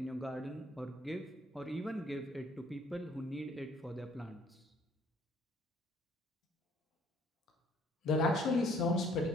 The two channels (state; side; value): normal; both; correlation 0.61